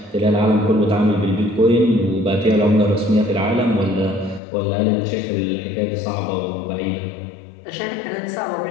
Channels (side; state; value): right; drops out; at 4.4 s